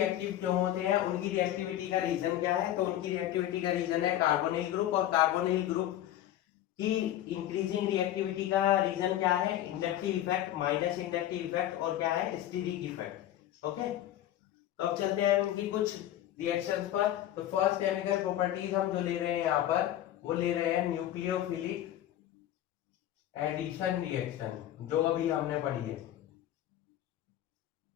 क्यों होते हैं, उनकी रिएक्टिविटी का रीजन क्या है। तो उनकी रिएक्टिविटी का रीजन है कार्बोनिल ग्रुप, और कार्बोनिल ग्रुप की इंक्रीजिंग रिएक्टिविटी का रीजन क्या है, inductive effect, minus inductive effect, और क्या है, स्टीरिक इफेक्ट। ओके, तो अब चलते हैं उनकी कुछ रिएक्शंस पर। तो फर्स्ट केमिकल प्रॉपर्टीज हम जो ले रहे हैं यहाँ पर, वो ले रहे हैं न्यूक्लियोफिलिक एडिशन रिएक्शन, जो अभी हमने पढ़ी है।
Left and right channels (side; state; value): right; quieter; 12.6 dB